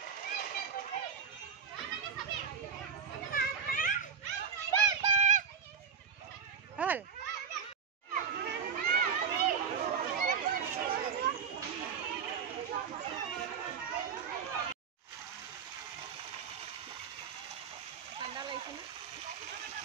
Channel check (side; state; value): left; quieter; 6.7 dB